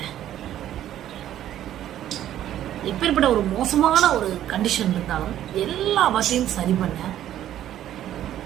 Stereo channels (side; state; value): left; quieter; 11.9 dB